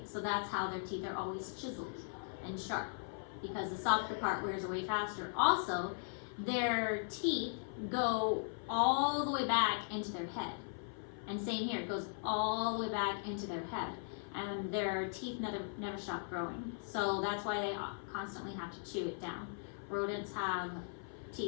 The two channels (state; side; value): silent; right; 52 dB below the other